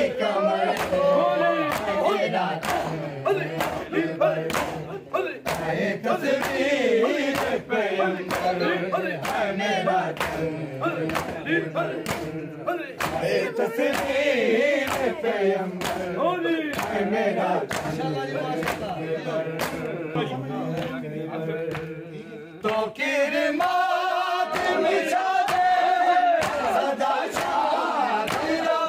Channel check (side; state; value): both; identical; correlation 1.00